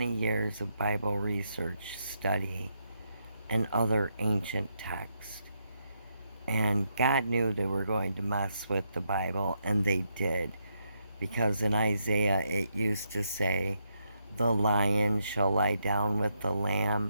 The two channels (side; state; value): both; inverted; correlation -0.80